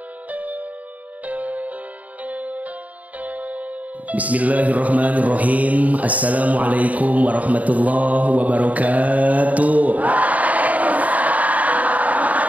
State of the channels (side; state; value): left; late; 0.072 ms